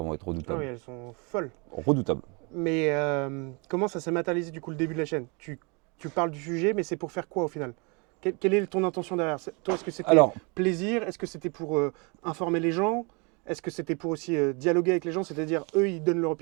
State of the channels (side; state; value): left; quieter; 31.9 dB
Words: vont être ah redoutables. oui, elles sont folles. Redoutables. Mais comment ça s'est matérialisé du coup le début de la chaîne? Tu parles du sujet, mais c'est pour faire quoi au final? Quelle est ton intention derrière? Toi, est-ce que c'était Alors, plaisir? Est-ce que c'était pour informer les gens? Est-ce que c'était pour aussi dialoguer avec les gens? C'est-à-dire, eux, ils donnent leur